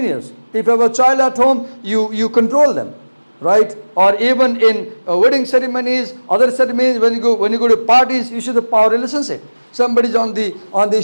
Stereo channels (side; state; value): both; inverted; correlation -1.00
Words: If you have a child at home, you control them, right? Or even in wedding ceremonies, other ceremonies, when you go to parties, you see the power relationship. Somebody's on the